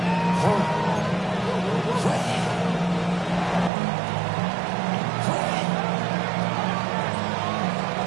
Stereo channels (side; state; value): left; drops out; at 3.7 s